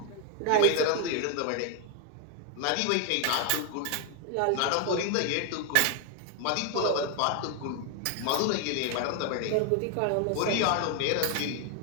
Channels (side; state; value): both; different; correlation 0.01